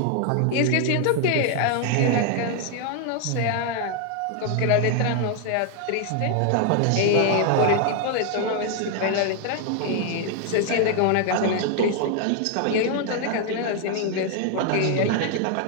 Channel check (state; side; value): different; both; correlation 0.00